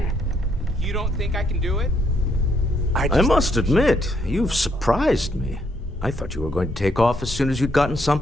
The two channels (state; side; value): normal; both; correlation 0.73